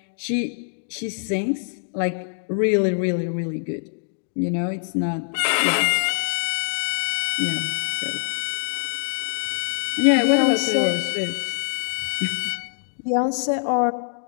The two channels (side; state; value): right; silent; digital silence